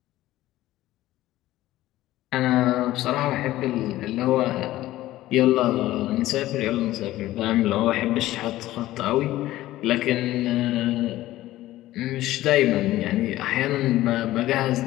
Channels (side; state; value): right; quieter; 15.6 dB